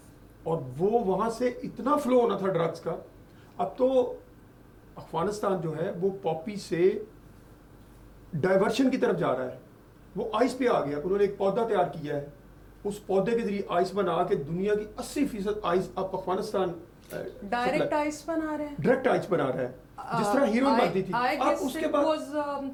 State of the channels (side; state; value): both; identical; correlation 1.00